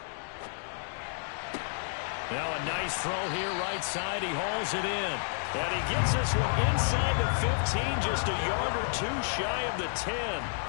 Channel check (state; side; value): silent; right; digital silence